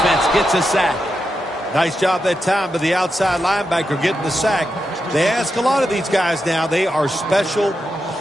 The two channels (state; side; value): normal; both; correlation 0.87